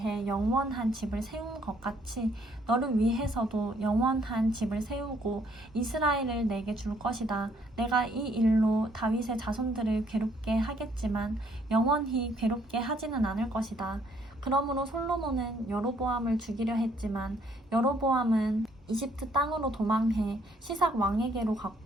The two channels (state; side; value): normal; both; correlation 0.67